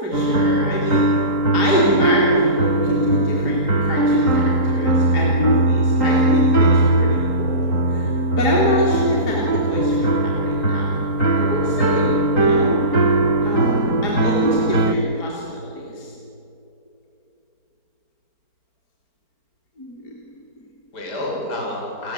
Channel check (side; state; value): right; late; 4.4 ms